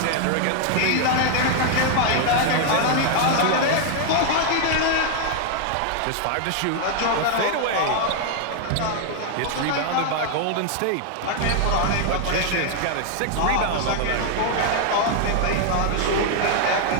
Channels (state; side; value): different; both; correlation 0.00